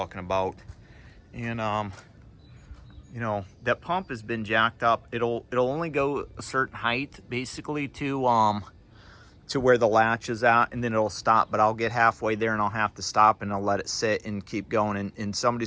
about. And you know, that pump has been jacked up. It'll only go a certain height, basically, to where the latch is at, and then it'll stop. But I'll get halfway there and I'll have to stop, and I'll let it sit and keep going. And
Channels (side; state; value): both; identical; correlation 1.00